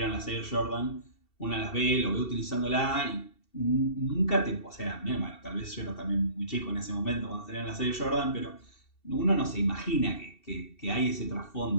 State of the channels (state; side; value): late; right; 2.7 ms